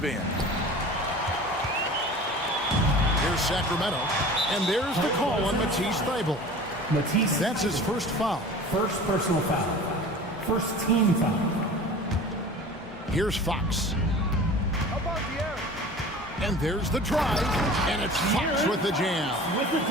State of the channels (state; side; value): normal; both; correlation 0.40